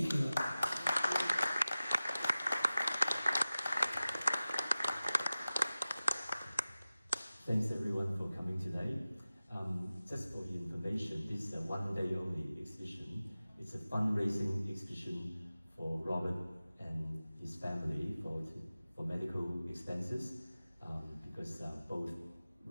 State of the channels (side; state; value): both; inverted; correlation -0.97